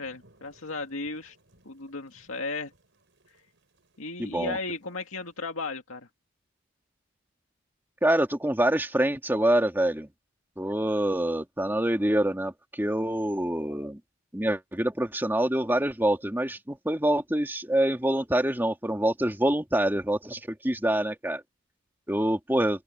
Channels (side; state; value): both; normal; correlation 0.83